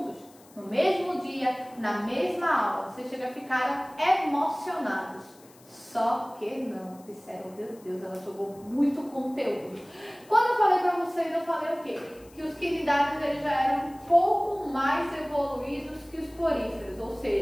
No mesmo dia, na mesma aula. Vocês chegam a ficar emocionados. Só que não, disseram, meu Deus, ela jogou muito conteúdo. Quando eu falei para vocês, eu falei o quê? Que os quinidários eles já eram um pouco mais evoluídos que os poríferos, ou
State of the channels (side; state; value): left; noise; hiss, 26 dB below the sound